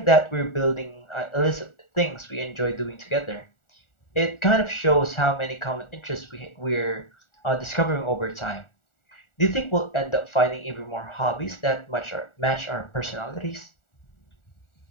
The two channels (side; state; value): right; late; 1.4 ms